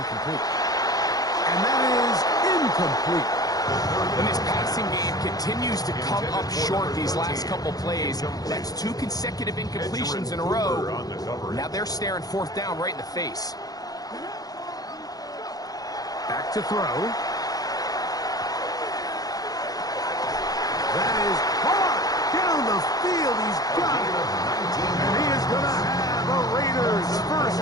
And that is incomplete. And this passing game continues to come up short these last couple plays. That's 2 consecutive incompletions in a row. Now they're staring fourth down right in the face. Back to throw. That is hard down the field. He's got it. And he is going to have a Raiders first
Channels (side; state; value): right; late; 0.18 ms